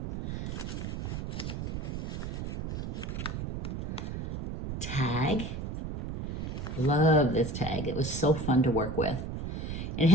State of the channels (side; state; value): right; noise; rumble, 4 dB below the sound